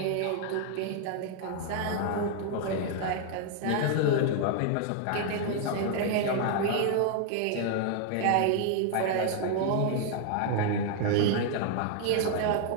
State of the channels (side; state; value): both; different; correlation 0.00